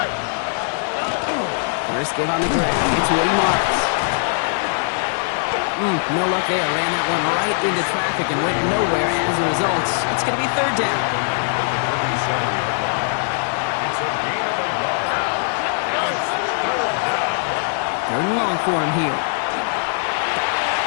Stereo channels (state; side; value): silent; right; digital silence